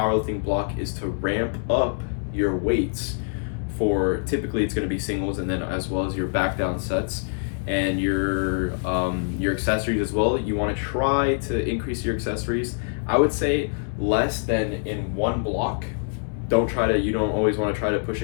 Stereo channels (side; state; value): right; silent; 62 dB below the other